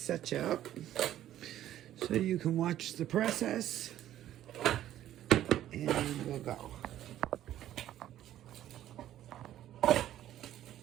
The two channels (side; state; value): left; quieter; 12.4 dB